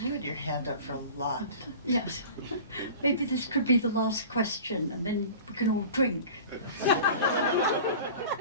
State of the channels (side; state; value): both; inverted; correlation -0.39